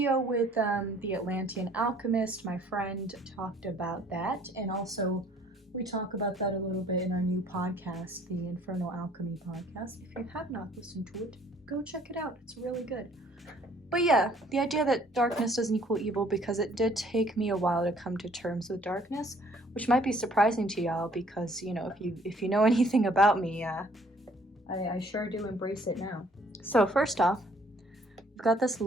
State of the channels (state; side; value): normal; both; correlation 0.59